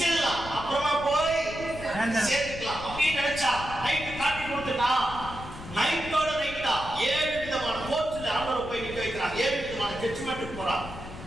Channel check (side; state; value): left; noise; rumble, 12 dB below the sound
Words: அப்புறமா போய் சேர்த்துக்கலாம் அப்படின்னு நினைச்சா நைட்டு காட்டி கொடுத்துட்டா. நைட்டோட நைட்டா 7 விதமான கோர்ட்ல ஆர்டர் போய் நிக்க வைக்கிறான். 7 விதமான ஜட்ஜ்மென்ட்க்கு போறான்.